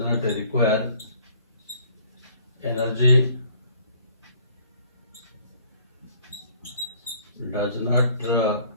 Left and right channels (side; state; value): both; inverted; correlation -0.58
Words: require energy, does not